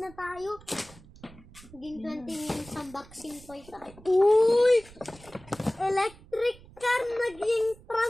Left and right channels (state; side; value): noise; right; rumble, 22 dB below the sound